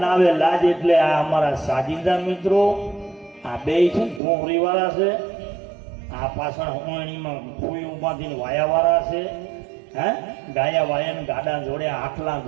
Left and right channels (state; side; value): drops out; left; at 4.2 s